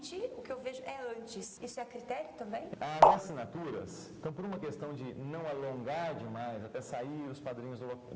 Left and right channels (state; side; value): identical; both; correlation 1.00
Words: o que eu vejo é antes. Isso é critério também? As assinaturas, então por uma questão de não alongar demais, até sair os padrinhos